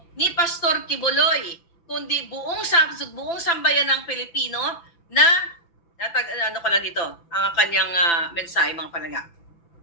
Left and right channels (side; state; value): right; late; 5.9 ms